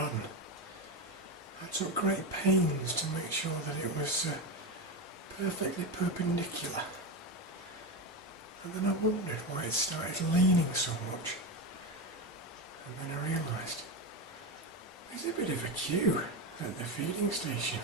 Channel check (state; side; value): normal; both; correlation 0.16